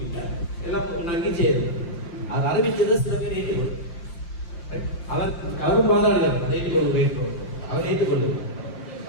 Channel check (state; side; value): late; right; 5.7 ms